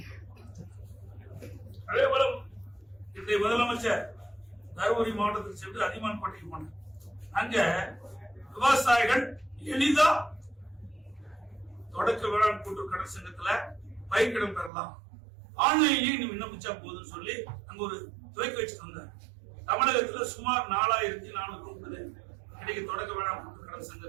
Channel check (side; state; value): left; drops out; at 14.7 s